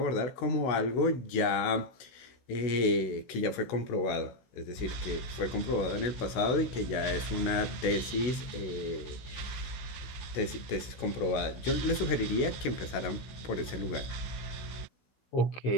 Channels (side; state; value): right; late; 16 ms